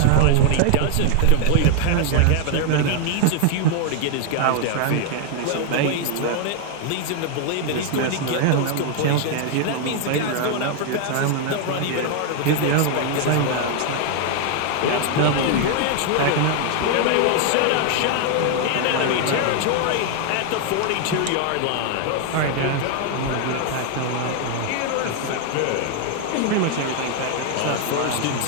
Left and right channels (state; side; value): different; both; correlation 0.00